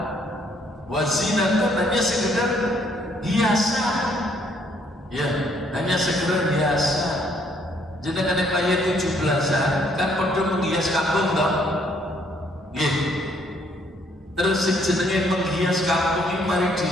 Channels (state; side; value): normal; both; correlation 0.67